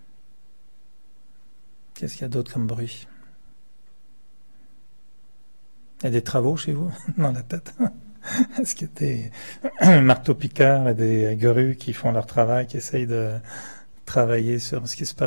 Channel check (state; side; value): inverted; both; correlation -1.00